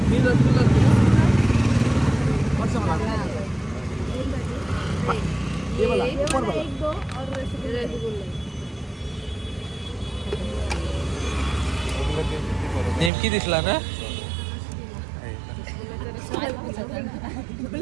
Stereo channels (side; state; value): left; drops out; at 13.1 s